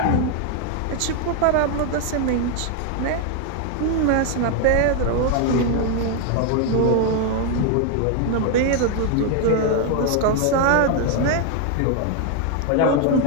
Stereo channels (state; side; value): different; both; correlation 0.01